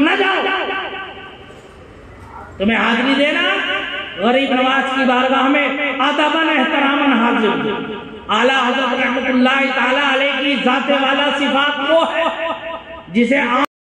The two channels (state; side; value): identical; both; correlation 1.00